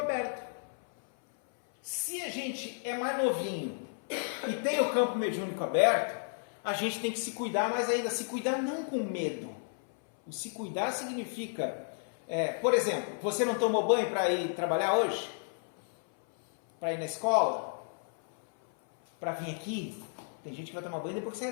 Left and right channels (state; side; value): silent; right; 56 dB below the other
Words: Se a gente é mais novinho e tem o campo mediúnico aberto, a gente tem que se cuidar mais ainda. Se cuidar não com medo. O se cuidar significa, por exemplo, você não tomou banho para ir trabalhar hoje? Para ir na escola? Para vir aqui? Tem gente que vai tomar banho depois que